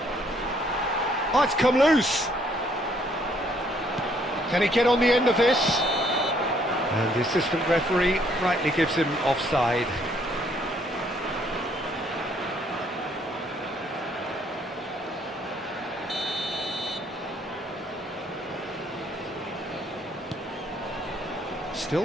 Oh, it's come loose. Can he get on the end of this? And the assistant referee rightly gives him offside.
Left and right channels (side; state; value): both; normal; correlation 0.66